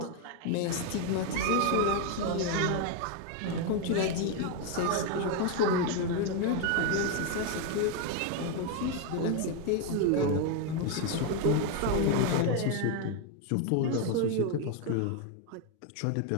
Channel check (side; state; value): both; different; correlation 0.01